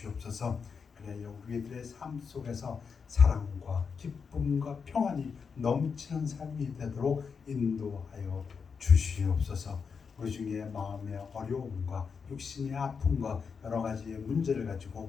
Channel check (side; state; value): right; quieter; 5.8 dB